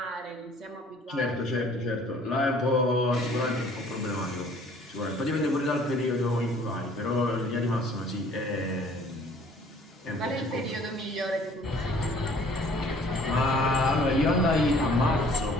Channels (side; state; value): both; normal; correlation 0.55